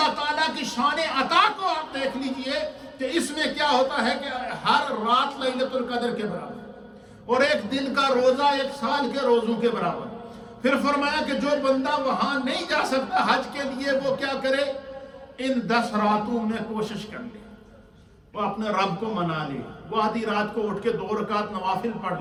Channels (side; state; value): both; identical; correlation 1.00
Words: تعالیٰ کی شان عطا کو آپ دیکھ لیجئے کہ اس میں کیا ہوتا ہے کہ ہر رات لیلۃ القدر کے برابر اور ایک دن کا روزہ 1 سال کے روزوں کے برابر۔ پھر فرمایا کہ جو بندہ وہاں نہیں جا سکتا حج کے لیے وہ کیا کرے، ان 10 راتوں میں کوشش کر لے، وہ اپنے رب کو منا لے، وہ آدھی رات کو اٹھ کے 2 رکعت نوافل پڑھ